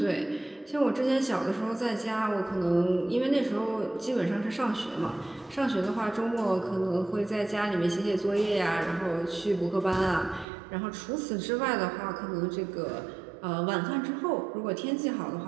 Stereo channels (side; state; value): left; drops out; at 10.5 s